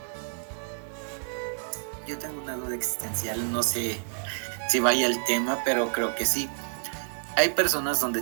Yo tengo una duda existencial, no sé si vaya el tema, pero creo que sí. Hay personas donde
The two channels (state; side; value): silent; left; digital silence